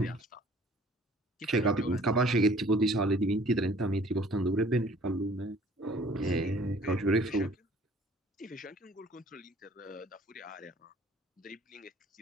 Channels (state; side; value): normal; both; correlation 0.54